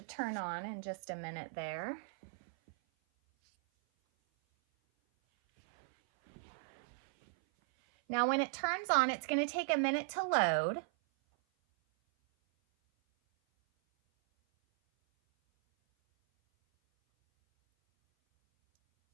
turn on in just a minute there. Now when it turns on, it's going to take a minute to load.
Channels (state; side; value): silent; left; 53 dB below the other